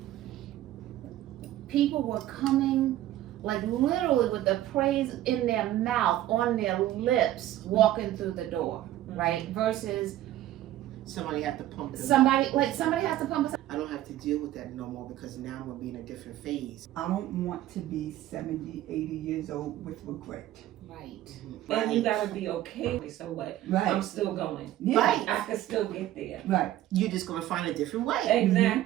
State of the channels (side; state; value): left; quieter; 13.8 dB